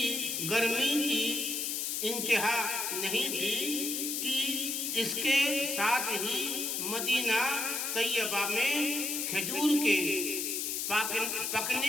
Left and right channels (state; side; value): noise; left; hiss, 1 dB below the sound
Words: گرمی کی انتہا نہیں تھی کہ اس کے ساتھ ہی مدینہ طیبہ میں کھجور کے